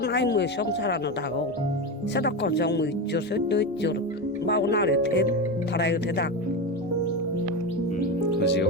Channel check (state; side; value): normal; both; correlation 0.18